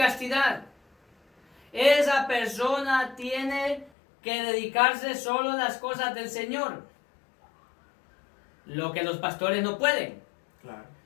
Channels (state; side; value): drops out; right; at 3.9 s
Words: Esa persona tiene que dedicarse solo a las cosas del Señor. Lo que los pastores no pueden. claro,